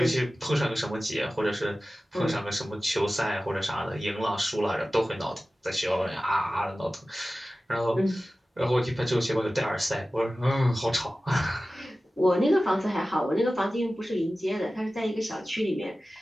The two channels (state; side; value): normal; both; correlation 0.96